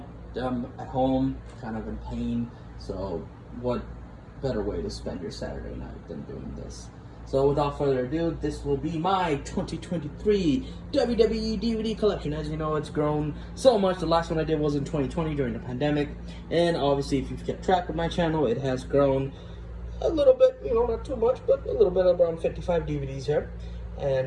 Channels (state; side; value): identical; both; correlation 1.00